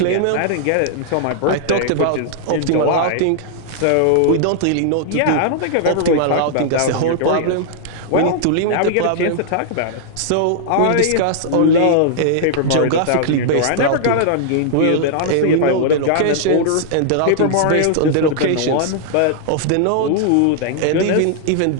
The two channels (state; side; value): different; both; correlation -0.01